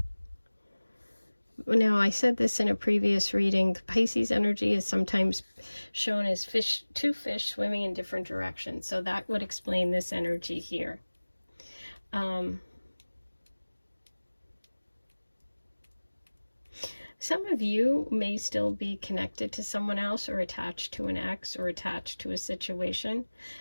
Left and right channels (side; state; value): both; inverted; correlation -1.00